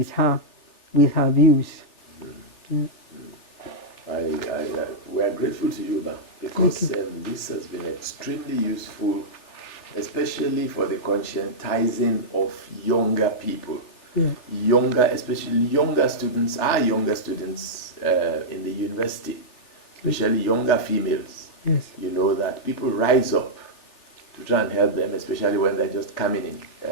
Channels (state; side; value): late; right; 3.4 ms